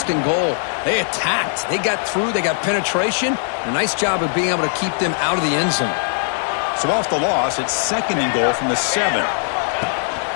and goal. They attacked. They got through. They got penetration. A nice job of being able to keep them out of the end zone. So off the loss, it's 2nd and goal from the 7.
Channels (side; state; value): right; silent; digital silence